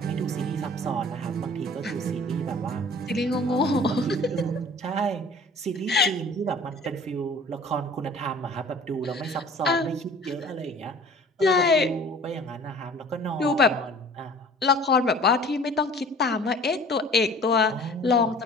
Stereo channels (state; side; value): normal; both; correlation 0.47